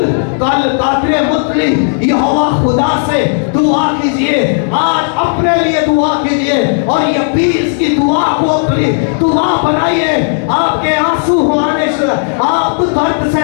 कल कादरे मुतली यहोवा खुदा से दुआ कीजिए। आज अपने लिए दुआ कीजिए और ये 20 की दुआ को अपनी दुआ बनाइए। आपके आंसू आने से आप दर्द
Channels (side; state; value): right; silent; digital silence